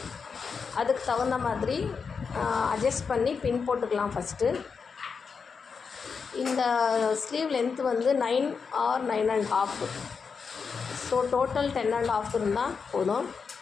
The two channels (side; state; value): right; quieter; 5.6 dB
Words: அதுக்கு தகுந்த மாதிரி அட்ஜஸ்ட் பண்ணி பின் போட்டுக்கலாம். ஃபஸ்ட்டு இந்த ஸ்லீவ் லென்த் வந்து 9 or 9.5. ஸோ டோட்டல் 10.5 இருந்தால் போதும்.